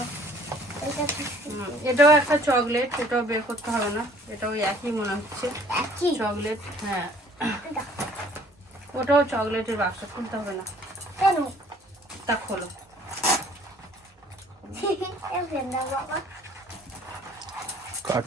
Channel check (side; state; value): both; normal; correlation 0.55